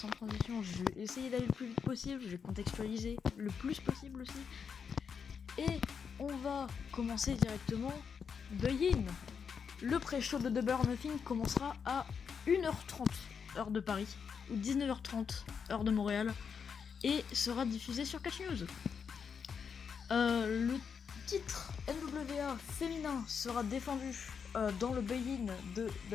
Je vais essayer d'aller le plus vite possible. Je vais contextualiser le plus possible aussi. Et on va commencer directement. Buy-in. Le pré-show de Double or Nothing commencera à 1h30 heure de Paris ou 19h30 heure de Montréal et sera diffusé sur Catch News. Le titre NWA féminin sera défendu dans le buy-in de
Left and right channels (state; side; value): quieter; right; 6.5 dB